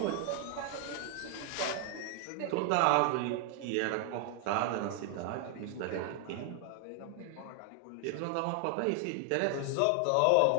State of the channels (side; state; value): both; different; correlation 0.00